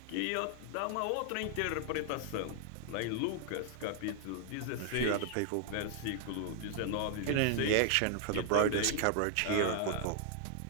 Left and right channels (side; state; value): both; different; correlation 0.00